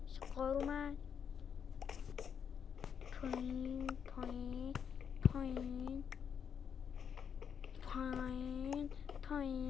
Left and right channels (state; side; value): quieter; right; 7.5 dB